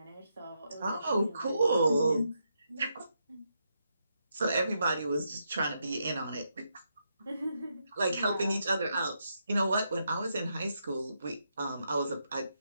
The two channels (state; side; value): inverted; both; correlation -0.81